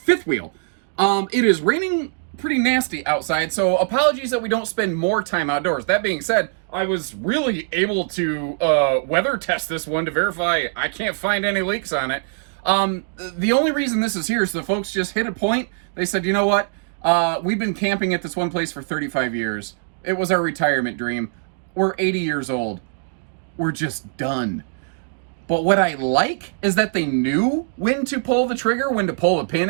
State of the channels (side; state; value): left; silent; digital silence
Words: wheel. It is raining pretty nasty outside, so apologies that we don't spend more time outdoors. That being said, I was really able to weather test this one to verify I can't find any leaks on it. The only reason this is here is the folks just hit a point. They said, you know what? We've been camping at this one place for 35 years. It was our retirement dream. We're 80 years old. We're just done. But what I like is that they knew when to pull the trigger, when to pull the pin,